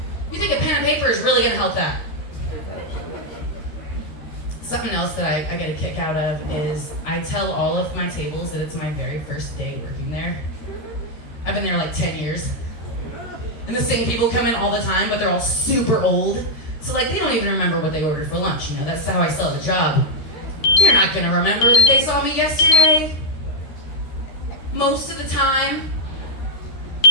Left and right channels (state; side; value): late; right; 13 ms